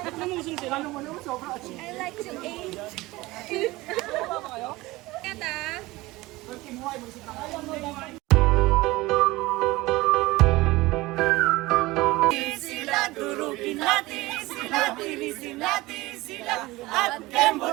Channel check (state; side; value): quieter; left; 20.1 dB